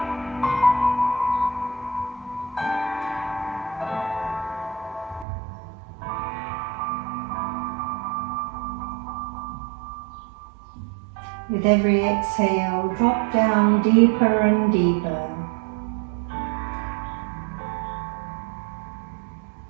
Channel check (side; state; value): left; drops out; at 5.2 s